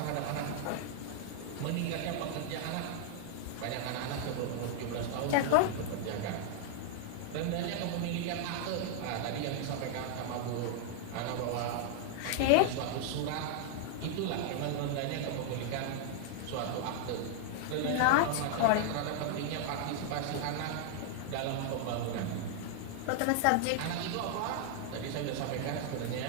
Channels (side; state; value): both; different; correlation 0.00